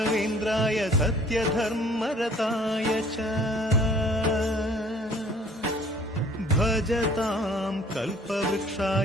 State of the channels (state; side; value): normal; both; correlation 0.55